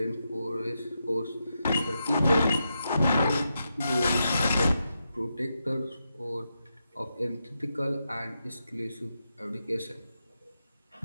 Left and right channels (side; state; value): both; inverted; correlation -0.86